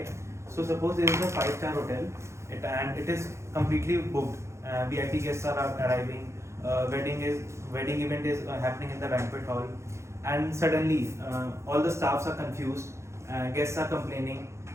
So suppose there is a 5-star hotel, and it is completely booked. VIP guests are arriving. Wedding event is happening in the banquet hall, and suddenly all the staffs are confused. Guests are complaining.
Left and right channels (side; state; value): left; late; 0.14 ms